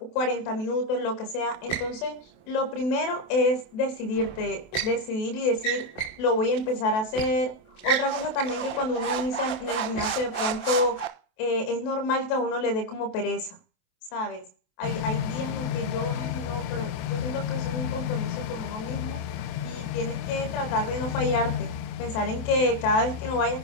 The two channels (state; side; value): late; right; 27 ms